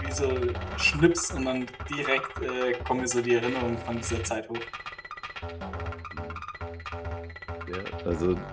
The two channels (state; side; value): identical; both; correlation 1.00